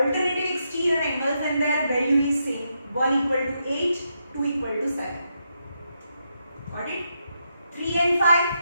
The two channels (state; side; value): inverted; both; correlation -0.82